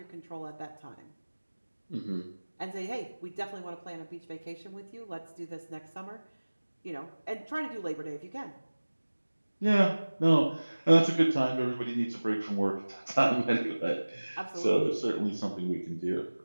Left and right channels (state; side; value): inverted; both; correlation -1.00